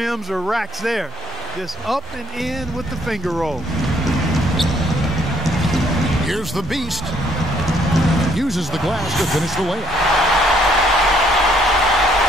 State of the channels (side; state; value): both; normal; correlation 0.67